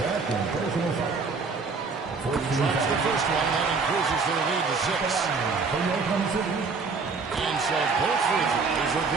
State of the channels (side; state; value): left; quieter; 4.6 dB